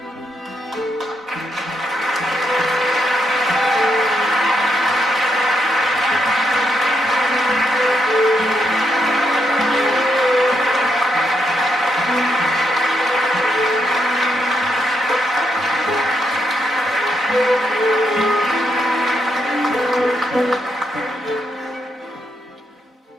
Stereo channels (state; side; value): normal; both; correlation 0.79